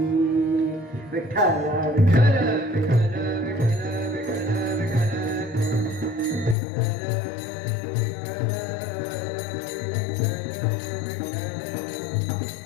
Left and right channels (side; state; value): right; drops out; at 6.6 s